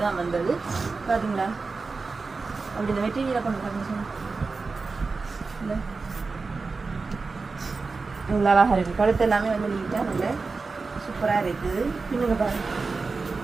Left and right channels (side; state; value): left; quieter; 4.2 dB